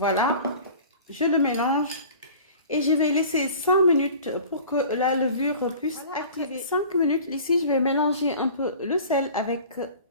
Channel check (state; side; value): inverted; both; correlation -0.43